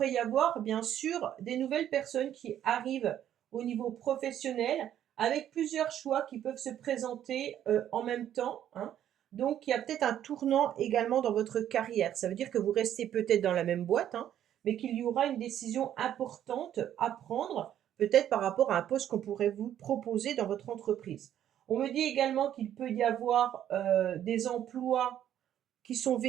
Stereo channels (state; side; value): quieter; left; 10.8 dB